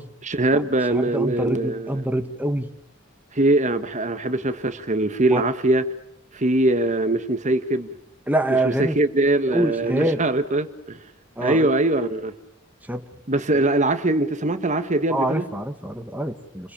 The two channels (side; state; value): both; normal; correlation 0.48